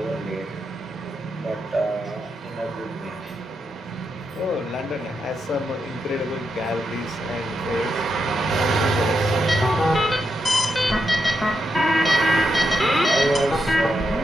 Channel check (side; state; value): both; normal; correlation 0.84